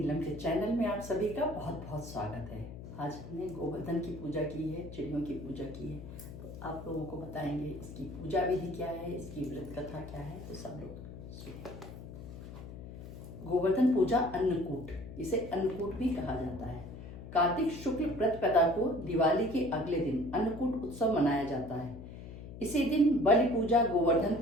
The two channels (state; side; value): noise; left; hum, 12 dB below the sound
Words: के चैनल में आप सभी का बहुत बहुत स्वागत है। आज हमने गोवर्धन की पूजा की है, चिड़ियों की पूजा की है, तो आप लोगों को बताएंगे इसकी पूजा विधि क्या है, इसकी व्रत कथा क्या है, तो सब लोग सुनिए। गोवर्धन पूजा अन्नकूट, इसे अन्नकूट भी कहा जाता है। कार्तिक शुक्ल प्रतिपदा को दिवाली के अगले दिन अन्नकूट उत्सव मनाया जाता है। इसी दिन बलि पूजा, गोवर्धन